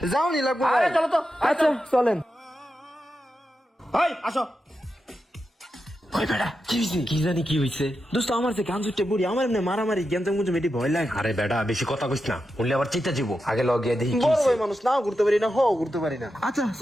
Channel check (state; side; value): normal; both; correlation 0.88